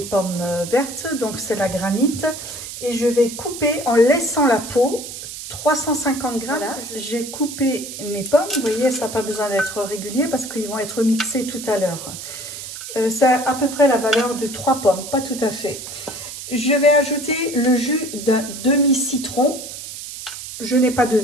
pommes vertes, donc c'est la granite, et je vais couper en laissant la peau 350 grammes. Voilà, j'ai coupé mes pommes, vous voyez, ça n'a pas besoin d'être régulier parce qu'ils vont être mixés tout à l'heure. Ça a à peu près la valeur de 3 pommes, pas tout à fait. Je vais ajouter le jus d'un demi-citron. Je n'ai pas de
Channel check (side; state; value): right; noise; hiss, 10 dB below the sound